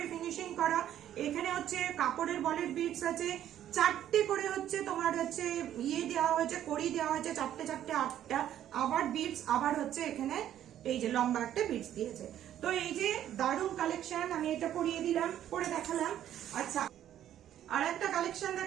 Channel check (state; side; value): quieter; left; 11.2 dB